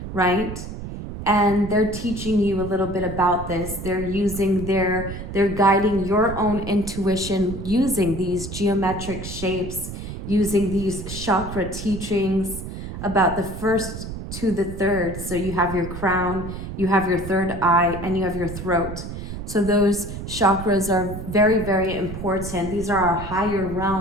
right? And they're teaching you a little bit about this. They're guiding your own intuition using these geometric shapes, using these chakra teachings about the first to the third. So you have your crown, you have your third eye, and you have your throat. So those chakras are very, very important. These are our higher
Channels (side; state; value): right; noise; rumble, 8 dB below the sound